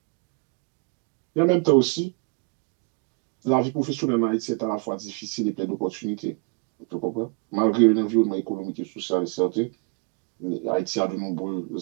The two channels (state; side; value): quieter; left; 35.0 dB